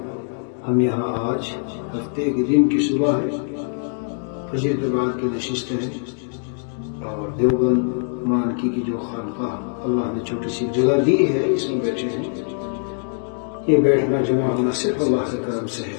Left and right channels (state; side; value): silent; right; digital silence